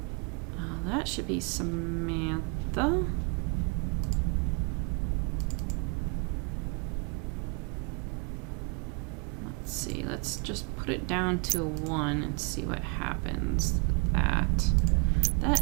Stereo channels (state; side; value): quieter; left; 33.1 dB